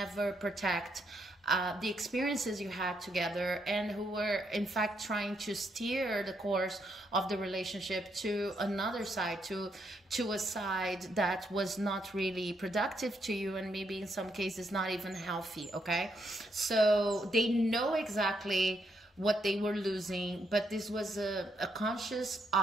protect the experiences you had together, and who were in fact trying to steer the course of the relationship to another side, to a side that was not really productive to you, and maybe in some cases not even healthy. Okay, so they know exactly what they were losing, but this was a conscious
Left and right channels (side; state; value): both; normal; correlation 0.77